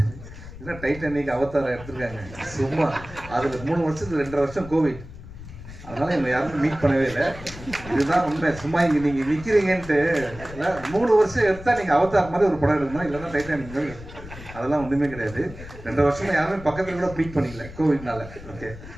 இல்லை டைட்டானிக், அவதாரம் எடுத்துருக்காங்க சும்மா. அதில் 3 வருஷத்துக்கு 2.5 வருஷம் கோவிட், அதனால என்னை யாரும் மீட் பண்ணவே இல்லை. இதுதான் உண்மை. சும்மா இங்கே நீங்கள் நிற்கிறீங்கன்ட்டு இல்லை, 3 வருஷம் எடுத்தால் நீங்கள் அவதார் மாதிரி ஒரு படம் எடுக்கணும், இல்லைன்னா டைட்டானிக் மாதிரி. அதெல்லாம் ஒன்றுமே கிடையாது. 2.5 வருஷமா யாருமே பக்கத்தில் கூட மீட் பண்ணிக்கல கோவிட்னால. ஓகே,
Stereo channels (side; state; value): left; noise; rumble, 15 dB below the sound